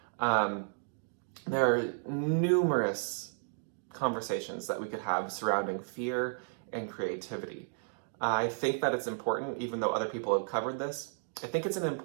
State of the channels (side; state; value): left; silent; digital silence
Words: there are numerous conversations that we could have surrounding fear and creativity. I think that it's important, even though other people have covered this, I think it's an